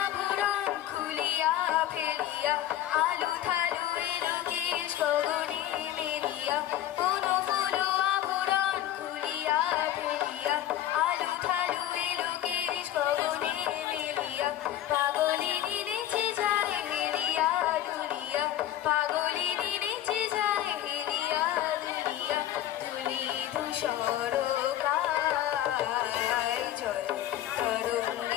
আভরণ খুলিয়া ফেলিয়া আলু থালু এলো কেশ গগনে মেলিয়া, কোনো ফুল আভরণ খুলিয়া ফেলিয়া আলু থালু এলো কেশ গগনে মেলিয়া, পাগলিনী নেচে যায় হেলিয়া দুলিয়া, পাগলিনী নেচে যায় হেলিয়া দুলিয়া, ধুলি ধূসর গায়, জল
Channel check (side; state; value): right; quieter; 12.2 dB